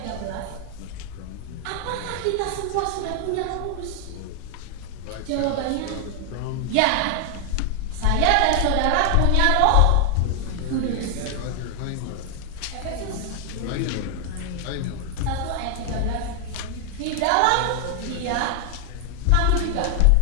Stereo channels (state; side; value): different; both; correlation 0.00